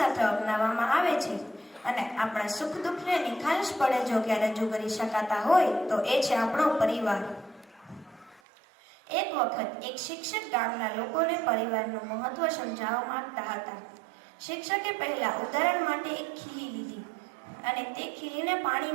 અપનાવવામાં આવે છે અને આપણા સુખ દુઃખને નિખાલસ પડે જો કે રજૂ કરી શકાતા હોય તો એ છે આપણો પરિવાર। એક વખત એક શિક્ષક ગામના લોકોને પરિવારનું મહત્વ સમજાવવા માંગતા હતા। શિક્ષકે પહેલા ઉદાહરણ માટે એક ખીલી લીધી અને તે ખીલીને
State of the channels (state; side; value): drops out; left; at 8.4 s